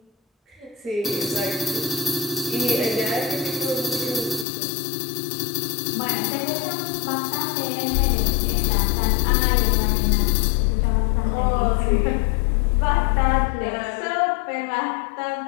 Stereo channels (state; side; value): drops out; right; at 4.5 s